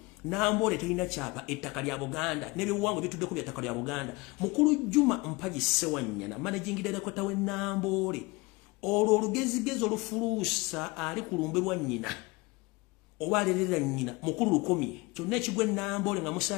Nambole terina kyapa ettaka lya Buganda n'ebyobuwangwa bituddeko bya ttaka lya Buganda mukulu Juma Mpaji Sewanyana managing director we Nambole olwo olugezigezo olufuluusa ali ku lumbe lwa nnyina oba alerera nnyina mukulu lukomye kyonna ekigwe Nambole nga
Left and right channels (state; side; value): quieter; right; 24.1 dB